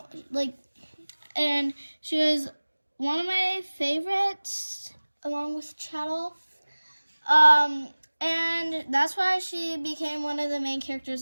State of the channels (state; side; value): inverted; both; correlation -1.00